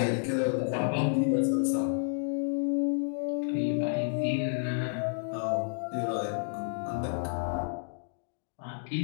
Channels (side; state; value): right; silent; digital silence